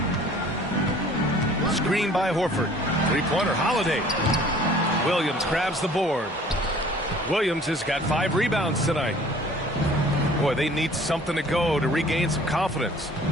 Screen by Horford. Three-pointer, Holiday. Williams grabs the board. Williams has got 5 rebounds tonight. Boy, they need something to go to regain some confidence.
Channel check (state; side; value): normal; both; correlation 0.51